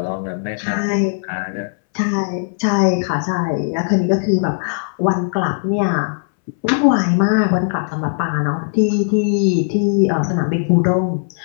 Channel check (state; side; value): silent; right; 63 dB below the other